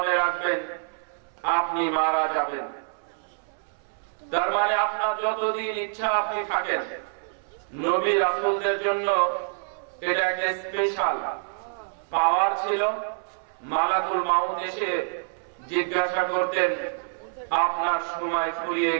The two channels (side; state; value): left; silent; 61 dB below the other